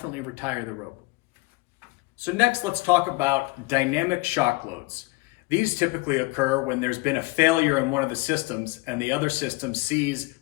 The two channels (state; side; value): quieter; right; 24.4 dB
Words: retire the rope. So next, let's talk about dynamic shock loads. These typically occur when there's been a failure in one of the systems and the other system sees